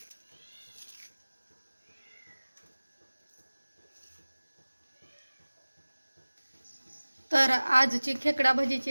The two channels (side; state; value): both; inverted; correlation -1.00